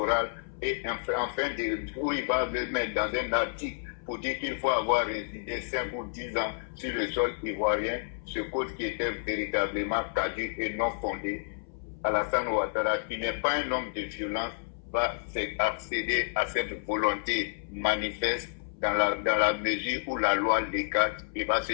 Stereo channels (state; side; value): silent; right; 58 dB below the other